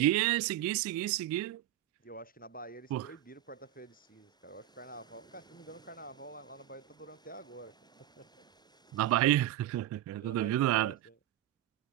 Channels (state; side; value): quieter; left; 13.4 dB